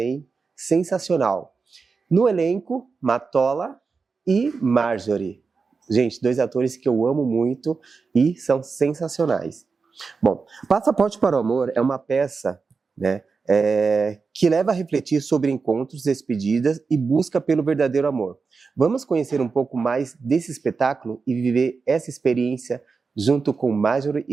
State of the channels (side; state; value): left; quieter; 4.8 dB